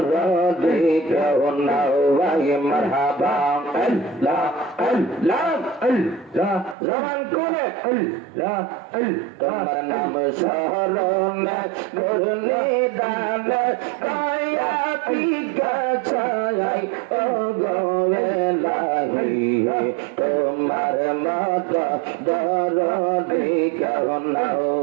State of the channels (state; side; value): drops out; left; at 6.8 s